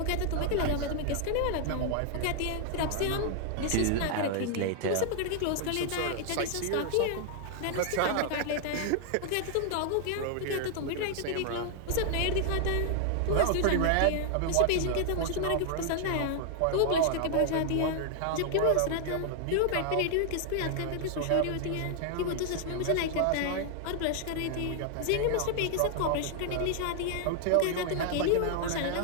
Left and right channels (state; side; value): different; both; correlation 0.00